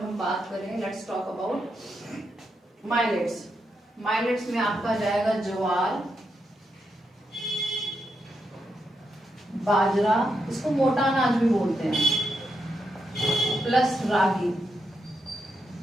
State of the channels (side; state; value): both; normal; correlation 0.83